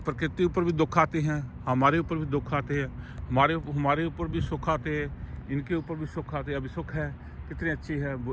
प्रकृति ऊपर भी दुख आते हैं, हमारे ऊपर भी दुख आते हैं, हमारे ऊपर भी सुख आते हैं, इनके ऊपर भी सुख आते हैं। अभी सुख है, कितने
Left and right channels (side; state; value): both; identical; correlation 1.00